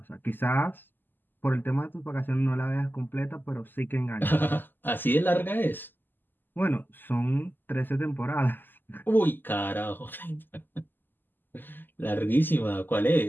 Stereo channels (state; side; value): late; right; 0.092 ms